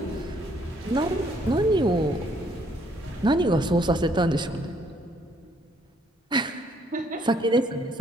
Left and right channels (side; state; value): both; normal; correlation 0.66